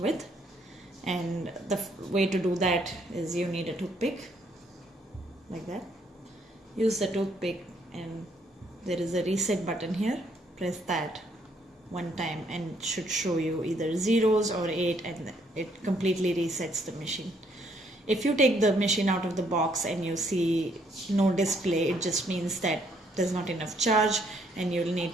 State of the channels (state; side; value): normal; both; correlation 0.69